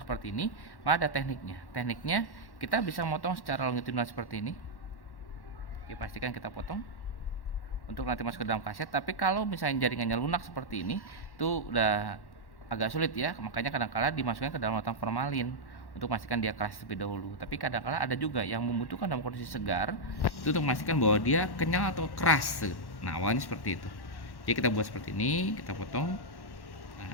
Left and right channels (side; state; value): right; late; 1.1 ms